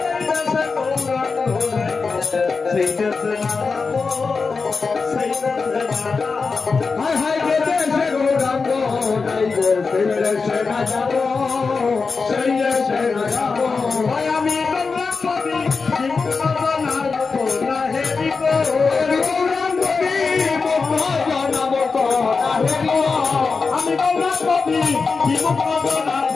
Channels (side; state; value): right; quieter; 4.6 dB